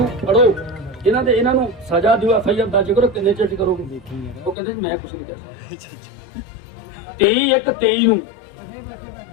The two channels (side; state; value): right; drops out; at 4.5 s